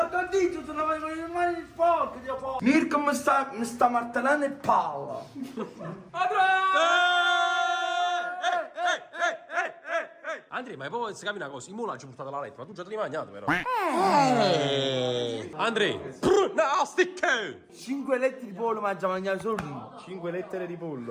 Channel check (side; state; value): both; identical; correlation 1.00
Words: il dito, se non avevo le mani sporche, Dio po'. Mirko mi sta martellando il palla. Andre, Andrea, ma poi si capi una cosa, i mulaggi portate alla lettera, ma tu già te li hai mangiati però. Andrea, nastic! 5 letti di pollo mangia mangiare solo tu. 5 lettere di